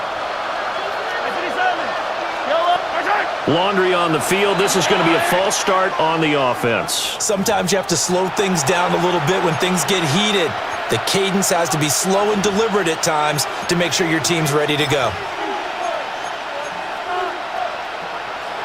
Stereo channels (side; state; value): both; identical; correlation 1.00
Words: Laundry on the field. This is going to be a false start on the offense. Sometimes you have to slow things down a little bit when things get heated. The cadence has to be slow and deliberate at times to make sure your team's ready to go.